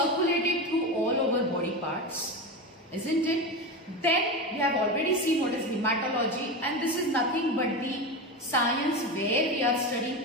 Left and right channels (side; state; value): both; normal; correlation 0.21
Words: through all over body parts, isn't it? Then we have already seen what is hematology, and this is nothing but the science where we are